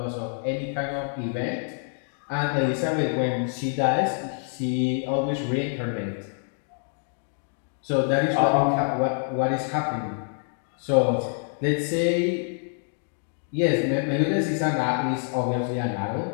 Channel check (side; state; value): right; silent; 59 dB below the other